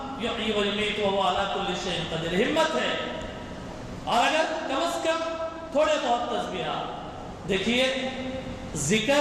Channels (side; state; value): both; identical; correlation 1.00